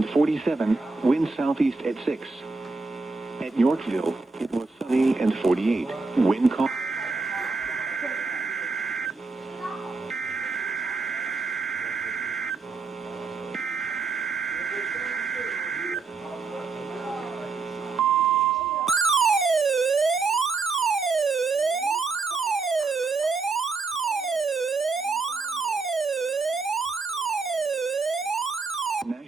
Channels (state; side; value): quieter; left; 4.2 dB